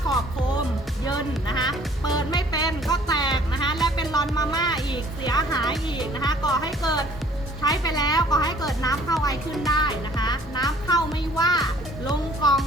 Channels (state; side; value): normal; both; correlation 0.56